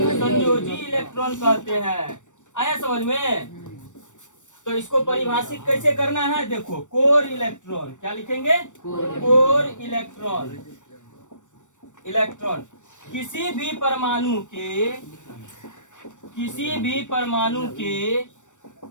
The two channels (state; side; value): late; right; 0.85 ms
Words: संयोजी इलेक्ट्रॉन कहते हैं। आया समझ में? तो इसको परिभाषित कैसे करना है? देखो, कोर इलेक्ट्रॉन क्या लिखेंगे? Core electron. किसी भी परमाणु